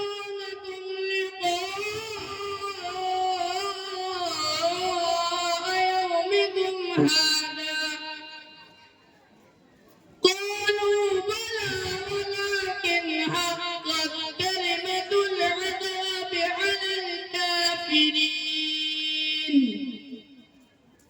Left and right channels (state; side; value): identical; both; correlation 1.00